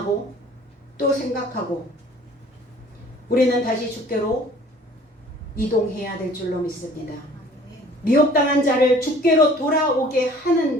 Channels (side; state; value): both; normal; correlation 0.51